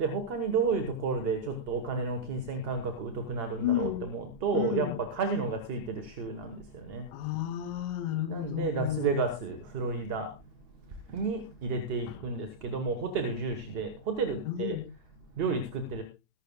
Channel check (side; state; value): left; late; 2.8 ms